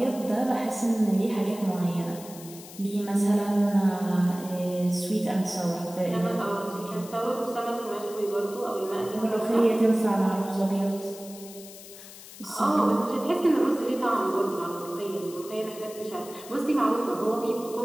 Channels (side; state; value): left; noise; hiss, 16 dB below the sound